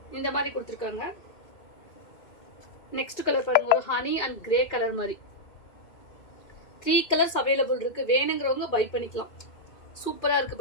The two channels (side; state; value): right; late; 2.4 ms